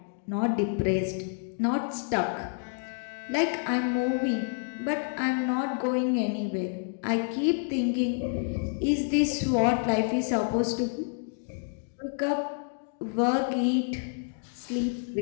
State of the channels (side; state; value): right; silent; 59 dB below the other